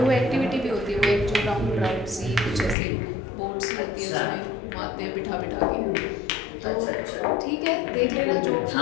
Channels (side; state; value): right; drops out; at 2.8 s